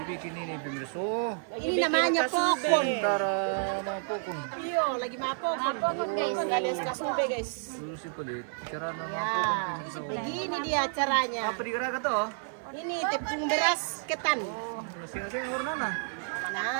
ini pemirsa? Oh, Ini namanya pokon. antara mau pokon. Iyo, lagi mapokon. Mapokon guys. Alias kasube guys. Dulu sih pelit. Cara nama Ya, pokon pemirsa. begini dia caranya. Apa digerakan tuh? Ini tepung beras ketan. Oh, masing-masing warna nah.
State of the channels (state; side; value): silent; left; 58 dB below the other